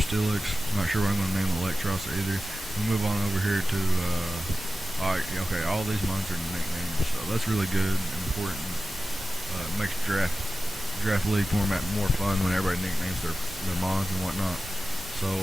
Steelix. Not sure what I'm going to name Electros either. We'll move on over here to, okay, all these mons are nicknames, so that's really good and important. Makes draft league format more fun when everybody nicknames their mons and whatnot. So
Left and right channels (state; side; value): normal; both; correlation 0.94